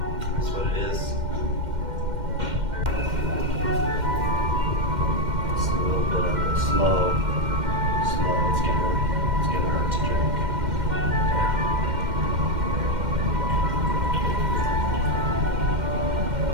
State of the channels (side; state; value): left; late; 2.1 ms